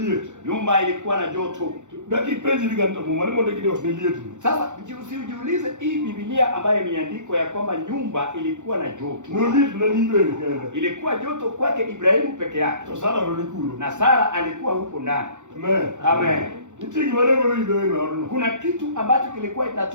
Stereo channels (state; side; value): late; left; 0.85 ms